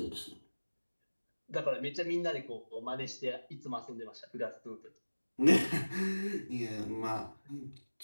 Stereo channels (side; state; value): both; inverted; correlation -1.00